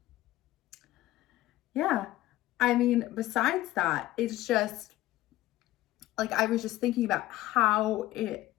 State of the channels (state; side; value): quieter; right; 16.1 dB